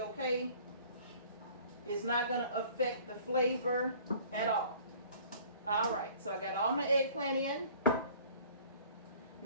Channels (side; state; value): both; inverted; correlation -0.51